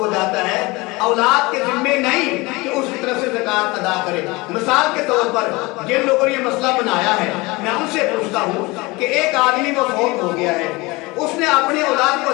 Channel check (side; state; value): right; quieter; 23.6 dB